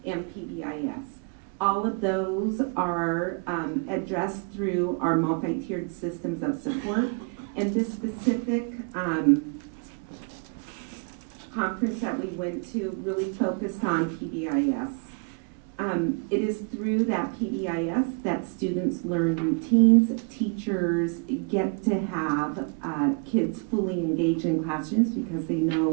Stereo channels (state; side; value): quieter; left; 38.3 dB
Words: and PBIS. All of those are addressed through our multi-tiered systems of support. And this specific conference that we went to really focused on PBIS. It is through that PBIS that students learn routines, teachers get to have kids fully engaged in classrooms because they